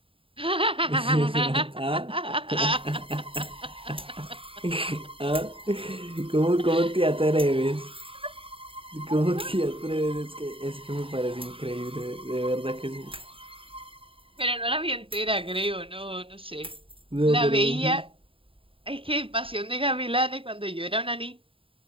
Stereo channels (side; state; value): left; late; 0.26 ms